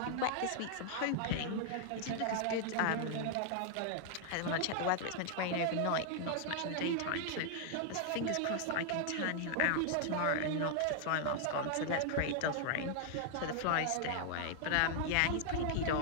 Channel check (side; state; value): both; different; correlation 0.00